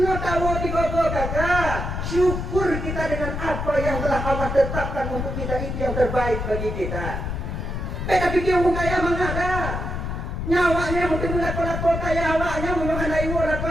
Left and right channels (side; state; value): left; noise; rumble, 4 dB below the sound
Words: tahu tiga-tiga kakak syukur kita dengan apa yang telah Allah tetapkan untuk kita itu yang terbaik bagi kita. Tapi dia orang kaya mengada nyawanya mungkin lako-lako kaya awaknya menyokan ibu